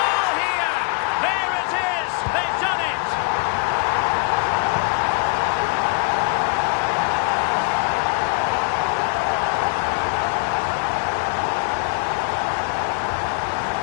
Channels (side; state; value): right; quieter; 33.1 dB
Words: here! There it is! They've done it!